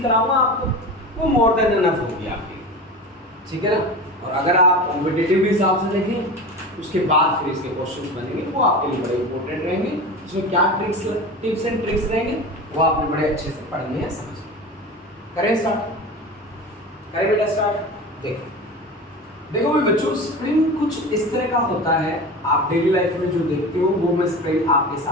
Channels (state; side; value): normal; both; correlation 0.30